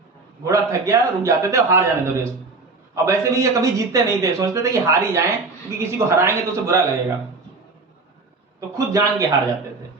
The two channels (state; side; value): quieter; left; 3.8 dB